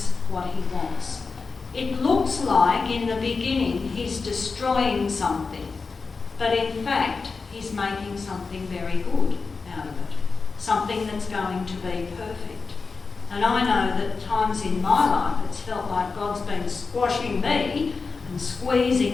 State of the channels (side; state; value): right; quieter; 4.5 dB